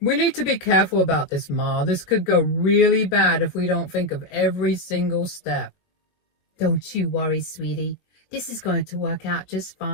need to be careful about this, Ma. This could go really bad if we don't think of every single step. Don't you worry, sweetie. This is going to work out just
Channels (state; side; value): late; right; 21 ms